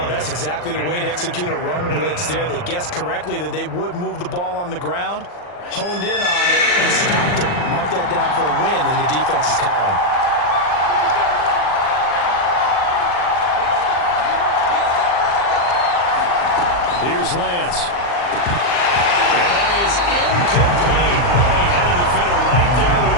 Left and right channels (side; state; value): right; late; 40 ms